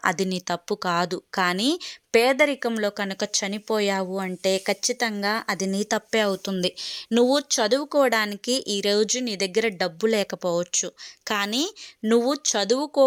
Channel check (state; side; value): identical; both; correlation 1.00